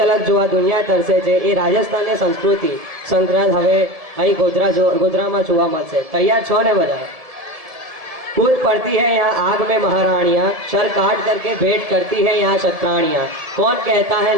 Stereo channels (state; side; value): late; left; 1.7 ms